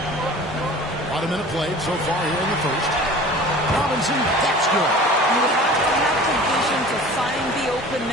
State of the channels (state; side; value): normal; both; correlation 0.42